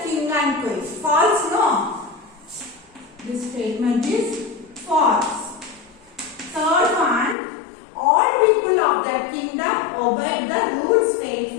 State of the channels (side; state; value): right; drops out; at 7.4 s